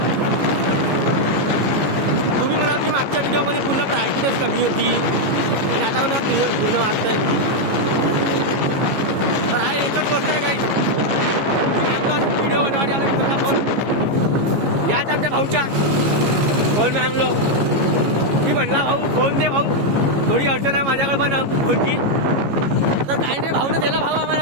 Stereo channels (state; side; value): late; left; 15 ms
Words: तुम्ही म्हणाल की मागच्या व्हिडिओमध्ये पूर्ण ब्राईटनेस कमी होती आणि आता मला क्लिअर पूर्ण वाटतंय. तर हा एकच गोष्ट आहे काही व्हिडिओ बनवायला आला तुम्हाला फोन याच आमच्या भाऊच्या फोन मागलो. मी म्हणला भाऊ फोन दे भाऊ, थोडी अडचण आहे माझ्याकडे पण फोनची. तर काही नाही भाऊने दिला भाऊ